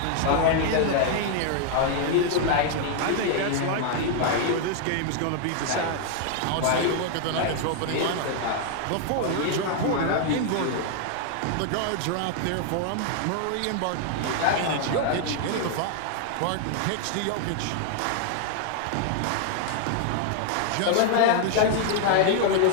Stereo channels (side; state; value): both; different; correlation 0.00